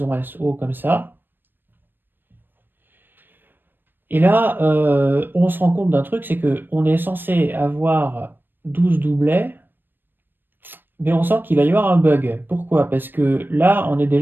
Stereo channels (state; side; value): late; left; 0.095 ms